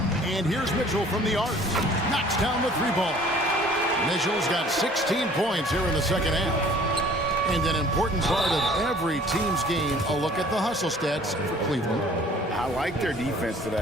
And here's Mitchell from the arc. Knocks down the 3-ball. Mitchell's got 16 points here in the second half. And an important part of every team's game, a look at the hustle stats for Cleveland. I like their defense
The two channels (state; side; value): normal; both; correlation 0.52